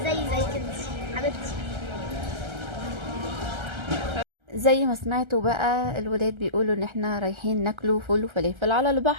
زي كده حبيبتي. زي ما سمعتوا بقى الولاد بيقولوا ان احنا رايحين ناكلوا فول وفلافل على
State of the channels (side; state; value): left; late; 1.3 ms